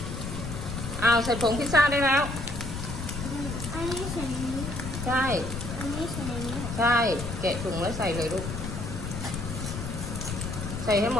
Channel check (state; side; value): noise; left; rumble, 6 dB below the sound